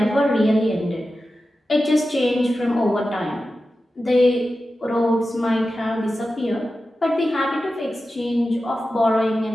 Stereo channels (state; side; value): normal; both; correlation 0.93